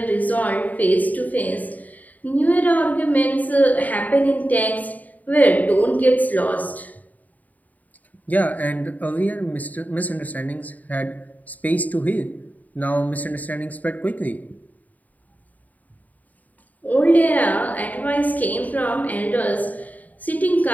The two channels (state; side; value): late; right; 0.077 ms